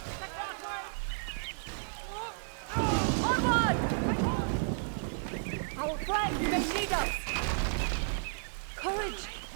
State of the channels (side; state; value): left; silent; digital silence